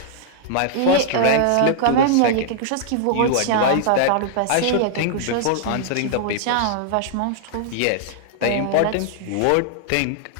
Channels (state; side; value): different; both; correlation -0.01